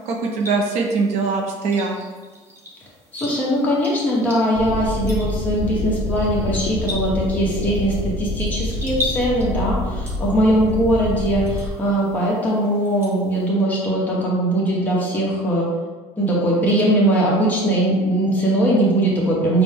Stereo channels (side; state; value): both; normal; correlation 0.45